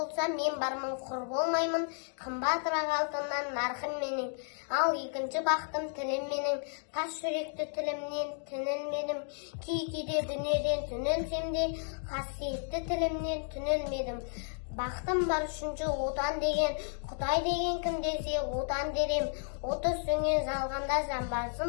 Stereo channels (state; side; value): silent; right; 56 dB below the other